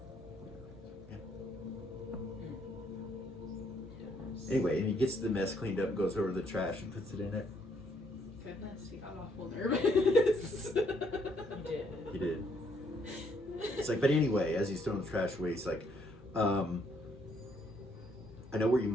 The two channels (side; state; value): both; normal; correlation 0.70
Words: anyway, and he gets the mess cleaned up, goes over the trash, and puts it in it. Goodness, he got awful nervous. He did. It's like, but anyway, as he's throwing the trash away, he's like, I know where you